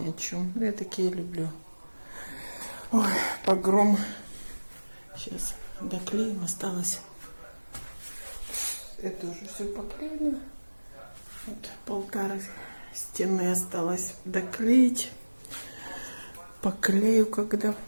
о чем. Я такие люблю. Ой, погром. Сейчас доклеим, осталось. Это уже все поклеено. Вот полтора стены осталось доклеить. Поклею, когда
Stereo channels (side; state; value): both; inverted; correlation -1.00